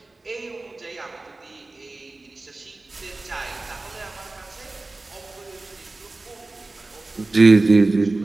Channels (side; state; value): left; quieter; 3.2 dB